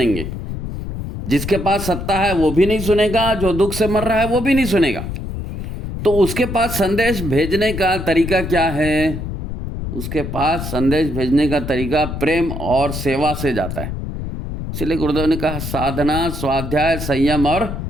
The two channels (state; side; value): noise; left; rumble, 6 dB below the sound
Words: जिसके पास सत्ता है वो भी नहीं सुनेगा, जो दुख से मर रहा है वो भी नहीं सुनेगा। तो उसके पास संदेश भेजने का तरीका क्या है? उसके पास संदेश भेजने का तरीका प्रेम और सेवा से जाता है। इसलिए गुरुदेव ने कहा साधना, स्वाध्याय, संयम और